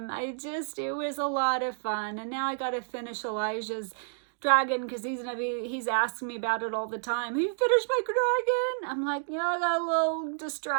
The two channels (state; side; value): silent; left; digital silence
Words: It was a lot of fun. And now I got to finish Elijah's dragon because he's asking me about it all the time. Have you finished my dragon? I'm like, yeah, I got a little